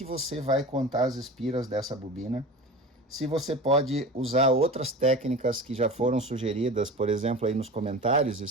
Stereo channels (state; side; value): normal; both; correlation 0.34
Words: você vai contar as espiras dessa bobina, se você pode usar outras técnicas que já foram sugeridas, por exemplo, aí nos comentários, e